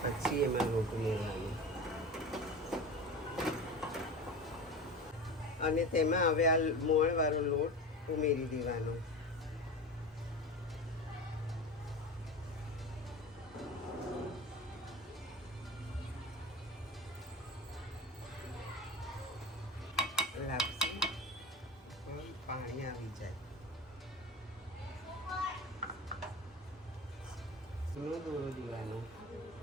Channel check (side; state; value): both; normal; correlation 0.31